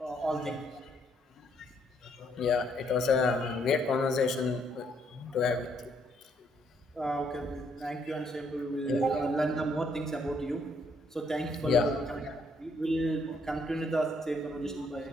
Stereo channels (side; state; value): both; normal; correlation 0.71